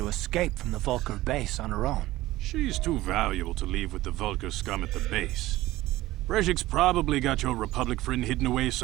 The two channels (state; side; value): quieter; left; 16.9 dB